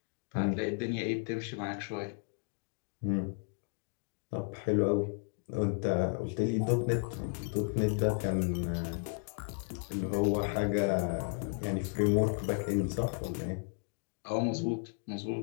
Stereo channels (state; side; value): silent; right; 55 dB below the other